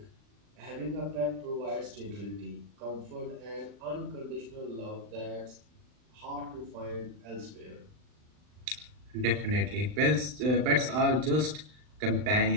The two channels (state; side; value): late; left; 39 ms